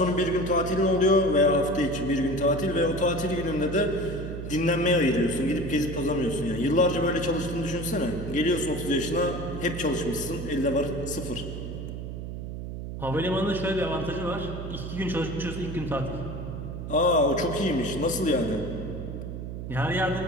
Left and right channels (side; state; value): right; noise; hum, 7 dB below the sound